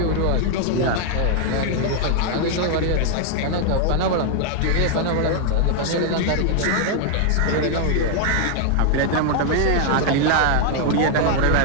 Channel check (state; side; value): different; both; correlation 0.00